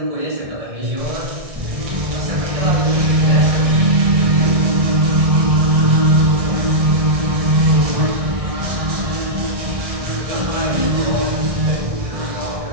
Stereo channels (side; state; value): left; late; 1.6 ms